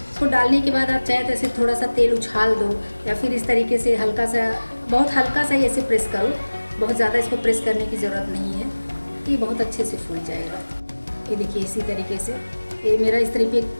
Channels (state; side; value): inverted; both; correlation -1.00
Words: इसको डालने के बाद आप चाहे तो ऐसे थोड़ा सा तेल उछाल दो, या फिर इस तरीके से हल्का सा, बहुत हल्का सा ही ऐसे प्रेस करो। बहुत ज़्यादा इसको प्रेस करने की ज़रूरत नहीं है, ये बहुत अच्छे से फूल जाएगा। ये देखिए इसी तरीके से ये मेरा